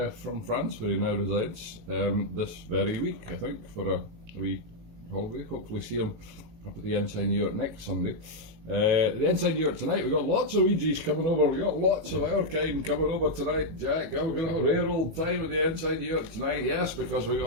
from France, where he now resides, this very week, I think, for a wee holiday. Hopefully see him up at the Ensign Yurt next Sunday. The Ensign Yurt tonight, we've got lots of Ouija's coming over, we've got lots of our kind coming over tonight, Jack. We're going to have a rare old time at the Ensign Yurt tonight, yes, because we've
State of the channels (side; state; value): left; late; 18 ms